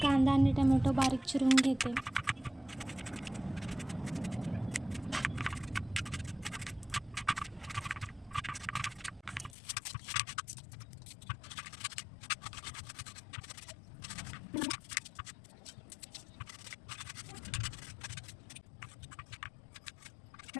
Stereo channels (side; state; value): right; drops out; at 9.6 s